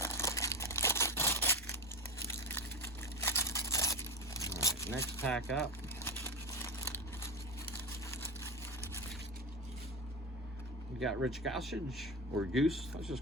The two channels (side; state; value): both; normal; correlation 0.18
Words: All right, next pack up. We got Rich Gossage, or Goose. Let's